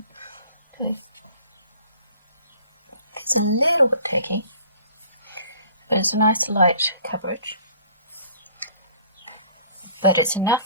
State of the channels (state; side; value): inverted; both; correlation -0.52